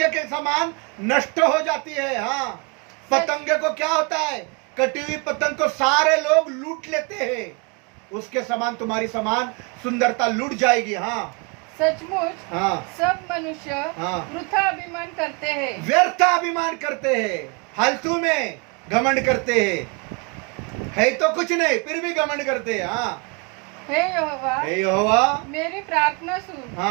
के समान नष्ट हो जाती है। हाँ पतंगे को क्या होता है, कटी हुई पतंग को सारे लोग लूट लेते हैं, उसके समान तुम्हारी समान सुंदरता लूट जाएगी। हाँ सचमुच सब मनुष्य वृथा अभिमान करते हैं, व्यर्थ अभिमान करते हैं, फालतू में घमंड करते हैं, है तो कुछ नहीं फिर भी घमंड करते हैं। हाँ हे यहोवा मेरी प्रार्थना सुन,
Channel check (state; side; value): quieter; left; 31.6 dB